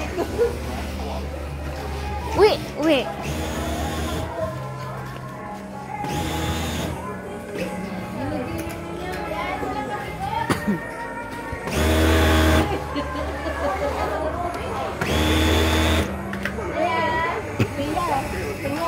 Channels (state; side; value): identical; both; correlation 1.00